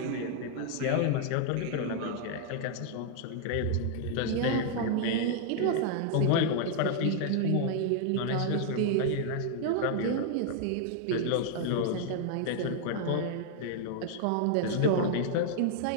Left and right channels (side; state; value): both; different; correlation -0.01